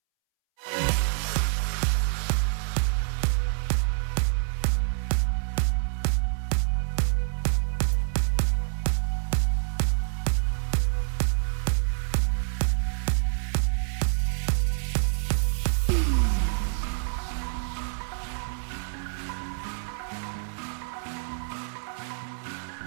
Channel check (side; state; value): left; silent; 60 dB below the other